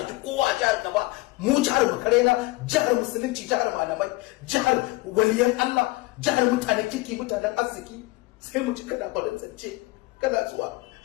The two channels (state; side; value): quieter; right; 21.6 dB